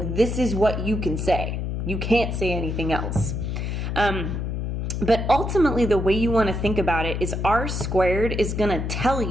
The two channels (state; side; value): noise; left; hum, 2 dB below the sound